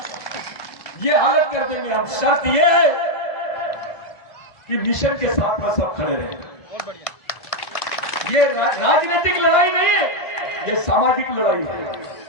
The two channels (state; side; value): late; right; 1.5 ms